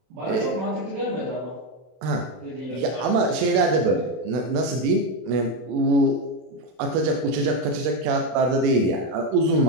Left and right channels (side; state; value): left; late; 32 ms